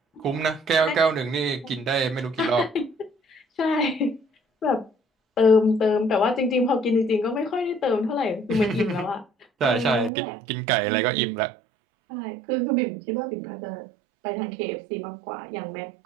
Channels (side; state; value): left; drops out; at 10.1 s